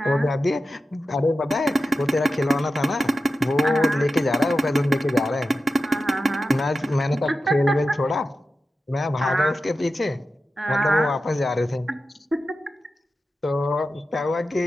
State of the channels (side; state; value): both; normal; correlation 0.92